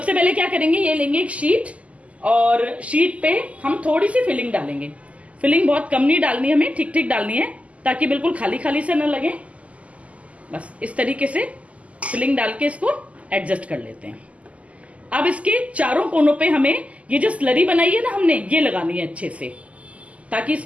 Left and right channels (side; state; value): left; late; 0.068 ms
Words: पहले क्या करेंगे, ये लेंगे एक शीट, और शीट पे हम थोड़ी सी फिलिंग डालेंगे। फिलिंग बहुत कम नहीं डालनी, हमें ठीक ठीक डालनी है, ताकि बिल्कुल खाली खाली से न लगे। बस इस तरीके से फिलिंग डाल के इसको एडजस्ट कर लेते हैं। अब इसके चारों कोनों पे हमें ये जो स्लरी बनाई है ना हमने, ये लगानी है अच्छे से, ताकि